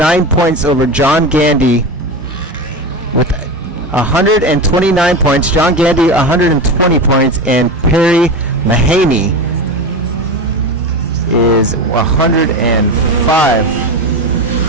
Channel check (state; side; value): normal; both; correlation 0.22